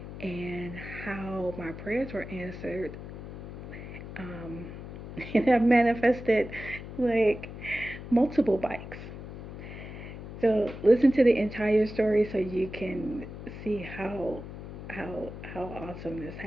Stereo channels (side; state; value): left; noise; hum, 11 dB below the sound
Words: and how my prayers were answered. Um, and I manifested like multiple bikes. So listen to the entire story so you can see how awesome this